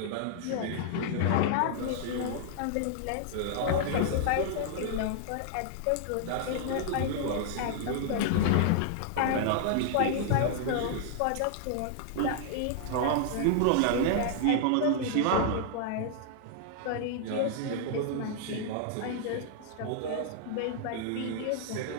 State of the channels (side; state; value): both; different; correlation -0.01